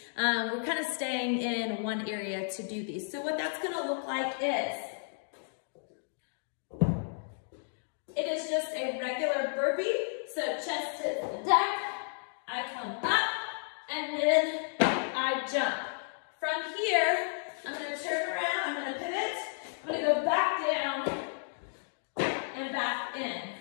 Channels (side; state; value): right; silent; digital silence